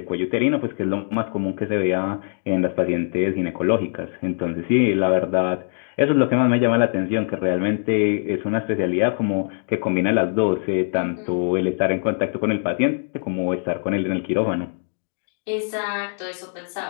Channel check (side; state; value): right; silent; digital silence